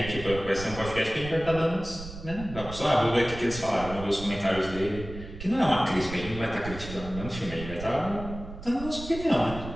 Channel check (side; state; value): right; noise; rumble, 11 dB below the sound